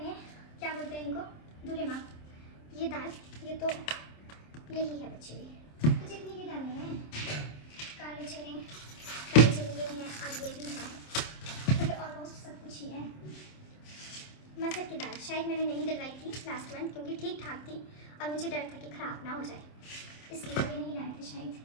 क्या बोलते हैं इनको, दूल्हे माँ, ये दाल, ये तो यही है बची हुई, तो जितनी भी दालें हैं, काले चने ये हैं, और ये भी है, तो ये ऑलमोस्ट सब कुछ ही है। मसर की दाल शायद मैंने नहीं डलवाई थी लास्ट मंथ, क्योंकि ठीक ठाक थी, और मुझे डर था कि ख़राब ना हो जाए, इसलिए ये नहीं लाए थे शायद,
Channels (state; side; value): late; right; 27 ms